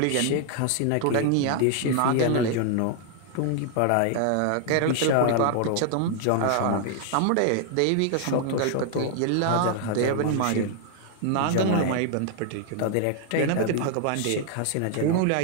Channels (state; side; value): different; both; correlation 0.00